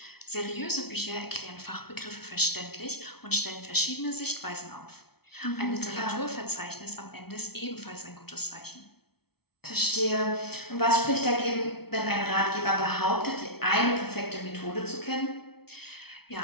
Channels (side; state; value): right; late; 0.96 ms